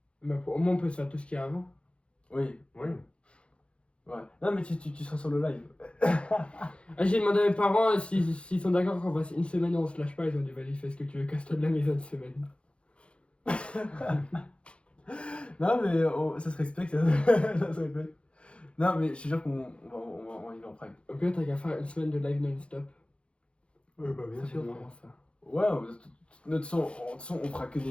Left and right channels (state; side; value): late; right; 0.059 ms